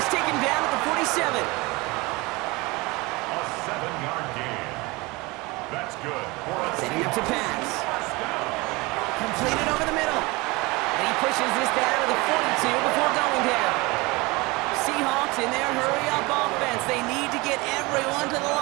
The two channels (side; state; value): left; quieter; 24.0 dB